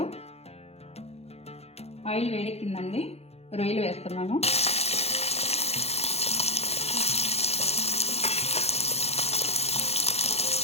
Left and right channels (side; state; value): right; late; 0.30 ms